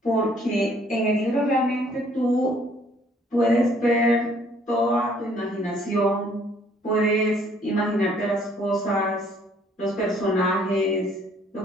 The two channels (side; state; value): both; normal; correlation 0.61